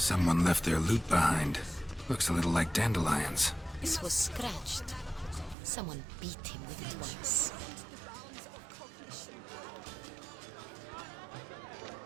left their loot behind. Looks a little like dandelions. This was scratched. Someone beat him with it once.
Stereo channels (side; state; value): left; drops out; at 5.6 s